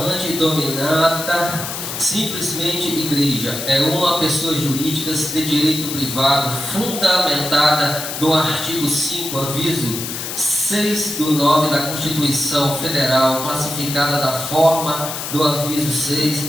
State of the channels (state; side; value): noise; left; hiss, 6 dB below the sound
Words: dominata, simplesmente igreja, é uma pessoa jurídica de direito privado fundamentada no artigo 5, aviso 6/9 da Constituição Federal, classificada da forma do aviso